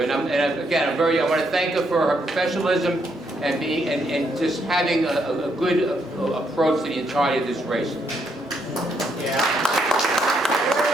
And again, I want to thank her for her professionalism and just having a good approach to the entirety of this race. Yeah.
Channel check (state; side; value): normal; both; correlation 0.75